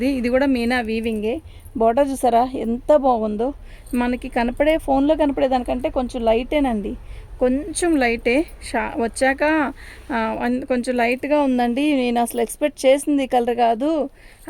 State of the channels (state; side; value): identical; both; correlation 1.00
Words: ఇది కూడా మీనా వీవింగే. బార్డర్ చూసారా ఎంత బాగుందో. మనకి కనపడే ఫోన్లో కనపడే దానికంటే కొంచెం లైటేనండి, కొంచెం లైటే. వచ్చాక కొంచెం లైట్గా ఉందండి. నేను అసలు ఎక్స్పెక్ట్ చేసింది కలర్ కాదు